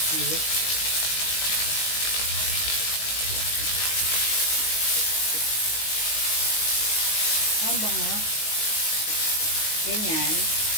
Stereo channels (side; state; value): right; late; 19 ms